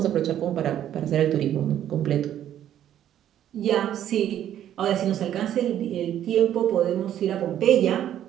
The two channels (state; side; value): quieter; left; 11.0 dB